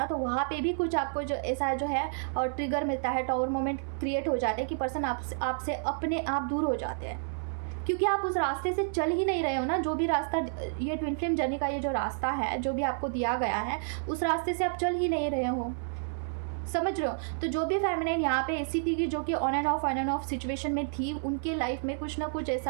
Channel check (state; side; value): silent; left; 58 dB below the other